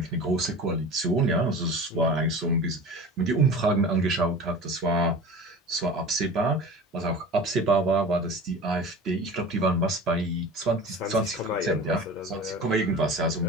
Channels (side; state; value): both; normal; correlation 0.36